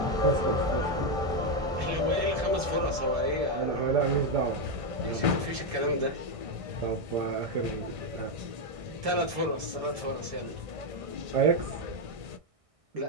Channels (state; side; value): late; left; 1.6 ms